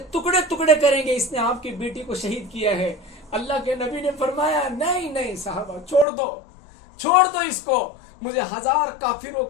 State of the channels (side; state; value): right; drops out; at 6.1 s